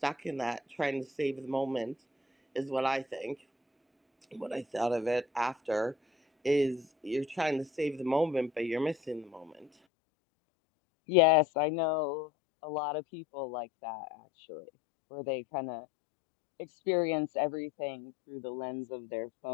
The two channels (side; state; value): right; drops out; at 9.7 s